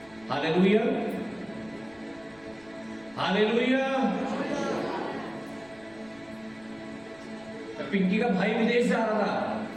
Hallelujah, hallelujah. पिंकी का भाई विदेश जा रहा था,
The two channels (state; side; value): noise; right; rumble, 27 dB below the sound